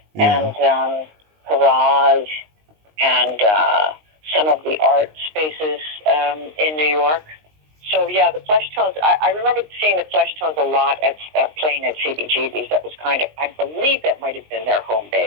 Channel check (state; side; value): late; left; 19 ms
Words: and Garage and some of the art spaces in New York. So, yeah, the Flesh Tones, I remember seeing the Flesh Tones a lot at playing at CBGB's. That was kind of, I believe that might have been their home